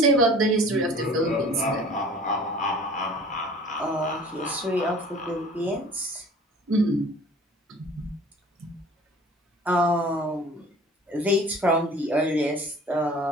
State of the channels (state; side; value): normal; both; correlation 0.47